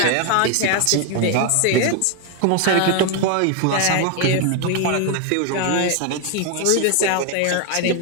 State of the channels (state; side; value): different; both; correlation 0.01